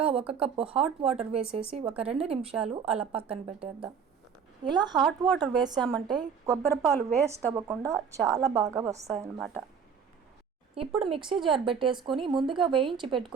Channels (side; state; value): left; quieter; 6.6 dB